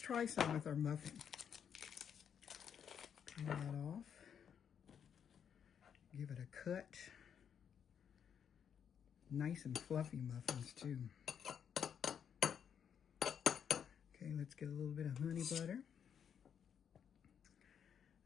some with our muffin. Peel that off. Give it a cut. Nice and fluffy muffins too. Okay, let's get a little bit of honey butter.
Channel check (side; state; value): right; quieter; 8.0 dB